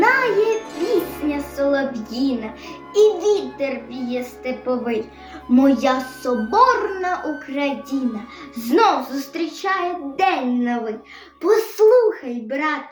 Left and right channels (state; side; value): identical; both; correlation 1.00